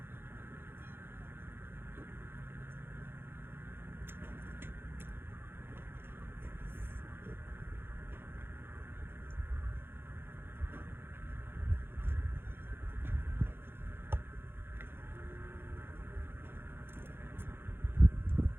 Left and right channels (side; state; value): left; late; 0.10 ms